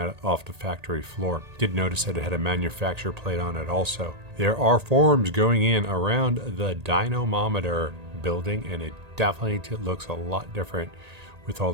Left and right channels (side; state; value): left; late; 1.8 ms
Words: off the factory floor. Did notice that it had a manufacturer plate on it also. There are forms going in around the dynamometer building, and it definitely looks a lot different with all